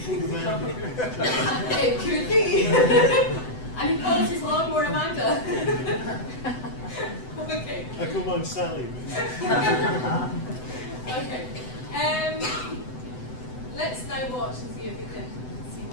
called Amanda. It could be. And he calls his lawnmower Amanda. Okay. I call mine Sally. Okay. Let's now watch and see if we can see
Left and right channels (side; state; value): right; late; 7.9 ms